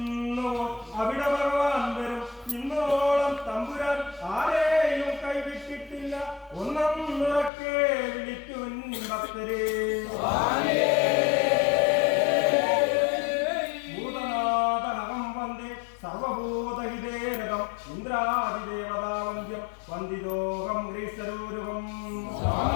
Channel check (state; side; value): drops out; right; at 7.5 s